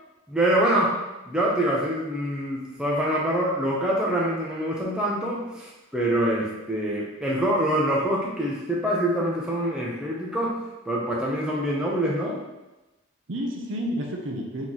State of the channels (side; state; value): both; normal; correlation 0.42